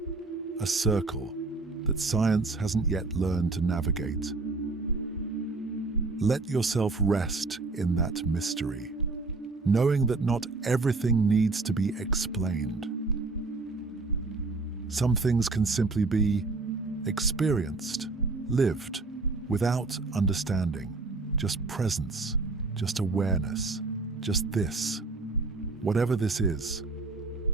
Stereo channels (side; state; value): left; quieter; 3.6 dB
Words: a circle that science hasn't yet learned to navigate. Let yourself rest in that mystery, knowing that not everything needs to be explained. Some things can simply be experienced, lived, without understanding, just presence, just awareness, just this, whatever this is.